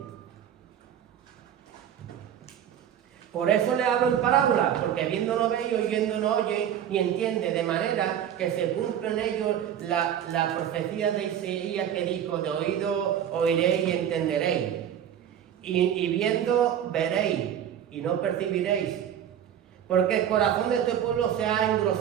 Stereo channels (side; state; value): left; quieter; 9.8 dB